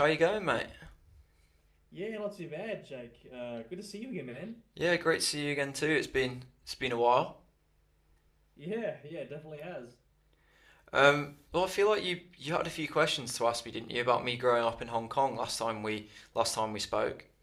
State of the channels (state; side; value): identical; both; correlation 1.00